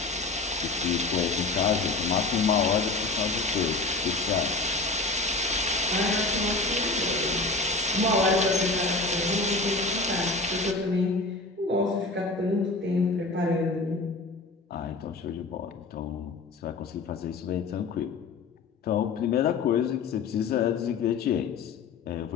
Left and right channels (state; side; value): quieter; right; 3.6 dB